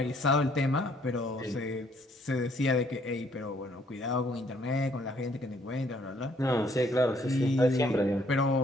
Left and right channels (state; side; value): normal; both; correlation 0.65